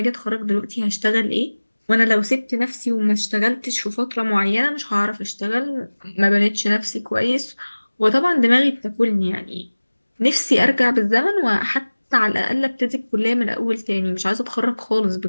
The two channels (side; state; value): both; inverted; correlation -1.00